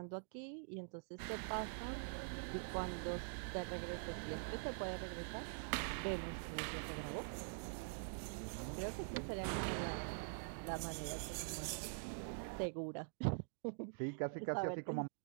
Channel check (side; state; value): left; silent; digital silence